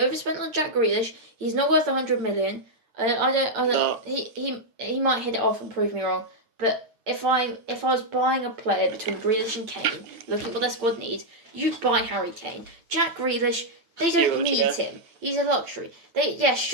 on Jack Grealish. He's not worth 100 million. I don't. No. He might hit it off and prove me wrong. But if I was buying a player between Grealish and Kane, looking at what their squad needs, you'd buy Harry Kane. Jack Grealish, they don't need him. He's a luxury. He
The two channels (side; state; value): left; late; 8.8 ms